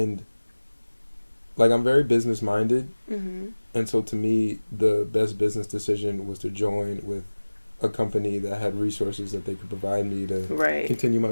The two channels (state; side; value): inverted; both; correlation -1.00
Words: like I'm very business minded, Mm-hmm. and so to me, the best business decision was to join with a company that had resources that they could provide me to continue my